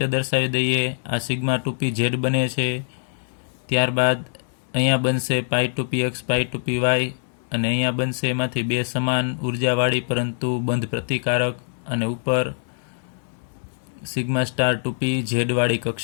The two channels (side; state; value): right; silent; 63 dB below the other